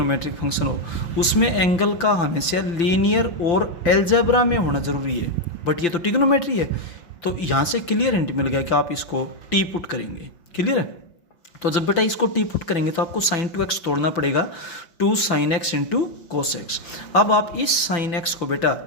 फंक्शन हो, उसमें एंगल का हमेशा लीनियर और एल्जेब्रा में होना जरूरी है। बट ये तो टिग्नोमेट्री है, तो यहाँ से क्लियर हिंट मिल गया कि आप इसको टी पुट करेंगे। क्लियर है? तो जब बेटा इसको टी पुट करेंगे तो आपको साइन 2x तोड़ना पड़ेगा 2 sin x into cos x. अब आप इस साइन एक्स को बेटा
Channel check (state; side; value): late; right; 5.9 ms